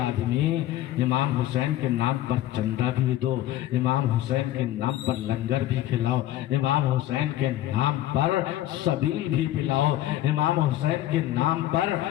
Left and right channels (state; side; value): quieter; right; 14.0 dB